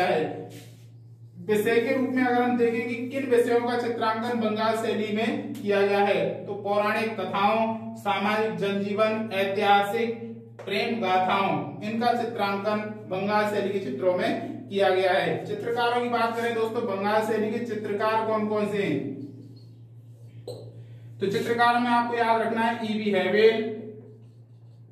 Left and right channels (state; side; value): identical; both; correlation 1.00